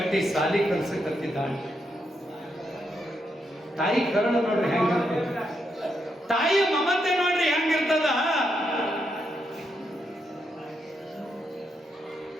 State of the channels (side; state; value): both; normal; correlation 0.81